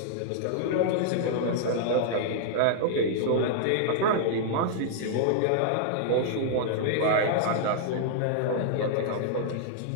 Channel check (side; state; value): both; different; correlation -0.01